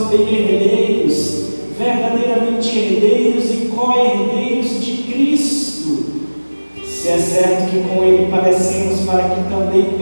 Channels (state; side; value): inverted; both; correlation -1.00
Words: herdeiros, verdadeiramente herdeiros e co-herdeiros de Cristo, se é certo que com Ele padecemos, para que também